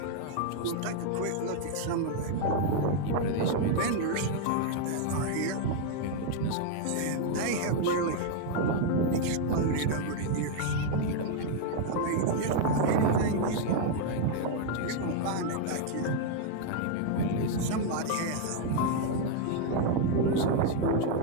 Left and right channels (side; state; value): both; different; correlation 0.00